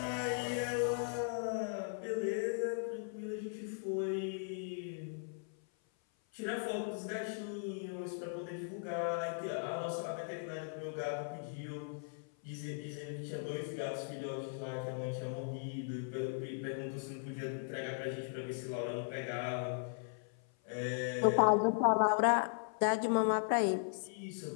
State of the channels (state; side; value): silent; right; 52 dB below the other